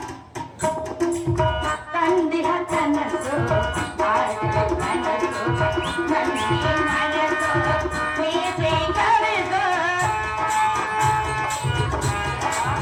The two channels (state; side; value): identical; both; correlation 1.00